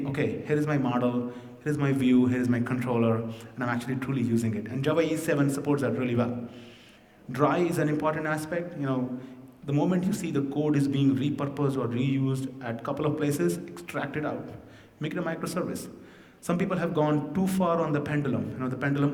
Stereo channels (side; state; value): both; identical; correlation 1.00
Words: okay, here is my model, here is my view, here is my controller, and I'm actually truly using it. And Java E7 supports that really well. Dry is an important aspect. The moment you see the code is being repurposed or reused at a couple of places, extract it out. Make it a microservice. Some people have gone too far on the pendulum. The